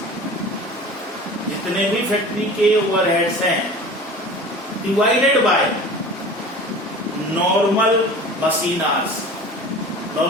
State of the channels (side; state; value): both; normal; correlation 0.39